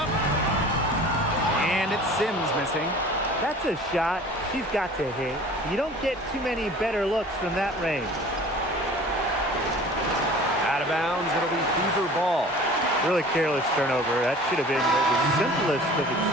And it's Sims missing. That's a shot she's got to hit. You don't get too many better looks from that range. Out of bounds, it'll be Fever ball. Really careless turnover. That should have been the simplest of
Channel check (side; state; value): both; normal; correlation 0.45